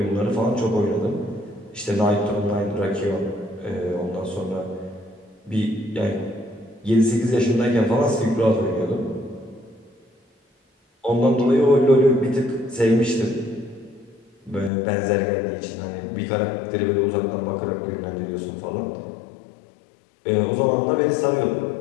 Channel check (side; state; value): right; drops out; at 14.7 s